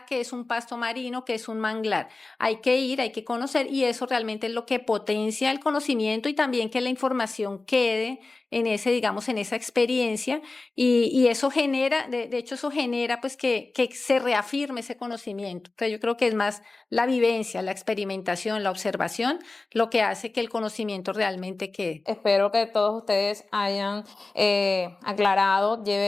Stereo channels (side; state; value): right; quieter; 3.4 dB